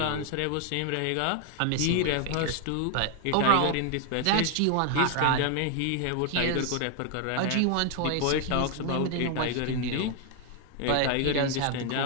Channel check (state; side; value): different; both; correlation 0.01